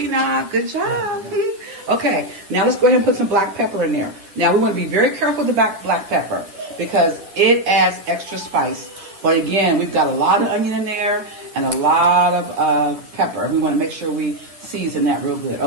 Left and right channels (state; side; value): late; left; 10 ms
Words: Good job. Okay, now let's go ahead and put some black pepper in there. Now, we want to be very careful with the black pepper because it adds extra spice. But again, we've got a lot of onion in there and a lot of pepper. We want to make sure we season that real good.